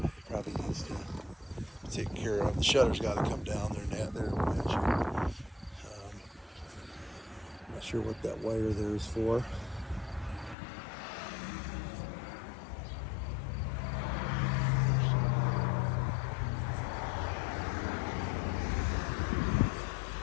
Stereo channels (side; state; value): right; drops out; at 10.6 s